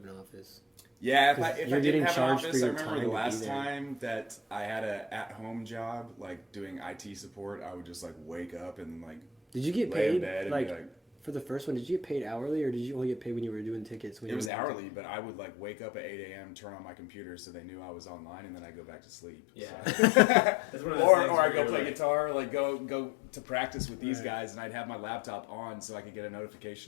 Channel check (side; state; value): right; drops out; at 14.5 s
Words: an office. Yeah, if I didn't have an office, I remember time the last time that I had a at-home job, like doing IT support, I would just like wake up and like did you get lay paid in bed and like be like, for the first one, did you get paid hourly, or did you only get paid when you were doing tickets? It was hourly, but I would like wake up at 8 a.m., turn on my computer so they knew I was online, and then I go back to sleep. Yeah. So. or I go play guitar, like go to practice with these guys, and I'd have my laptop on so I could get a